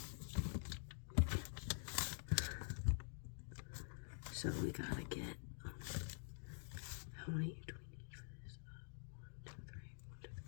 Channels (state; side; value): silent; right; digital silence